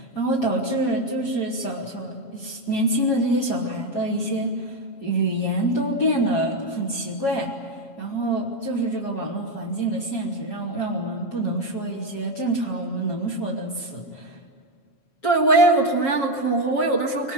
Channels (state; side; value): late; right; 7.3 ms